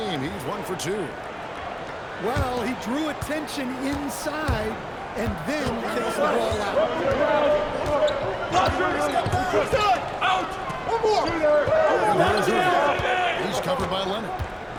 He's 1 for 2. Well, he drew attention inside and then takes the ball out. He's covered by Leonard.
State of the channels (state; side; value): identical; both; correlation 1.00